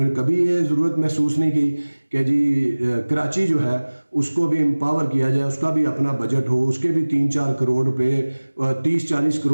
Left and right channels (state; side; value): inverted; both; correlation -1.00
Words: نے کبھی یہ ضرورت محسوس نہیں کی کہ جی کراچی جو ہے اس کو بھی امپاور کیا جائے, اس کا بھی اپنا بجٹ ہو, اس کے بھی 3-4 کروڑ روپے 30-40